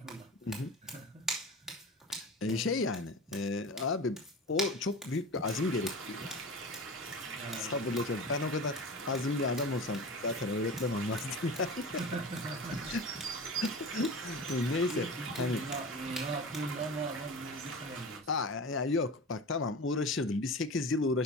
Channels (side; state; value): both; normal; correlation 0.32